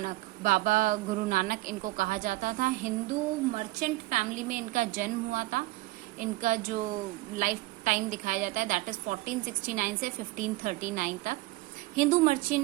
बाबा गुरु नानक इनको कहा जाता था। हिंदू मर्चेंट फैमिली में इनका जन्म हुआ था। इनका जो लाइफ टाइम दिखाया जाता है दैट इज 1469 से 1539 तक। हिंदू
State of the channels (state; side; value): quieter; left; 19.5 dB